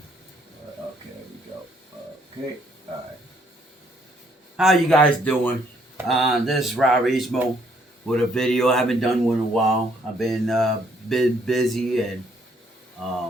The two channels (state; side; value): normal; both; correlation 0.67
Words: there we go. Okay, all right. How you guys doing? This is Robrismo with a video. I haven't done one in a while. I've been busy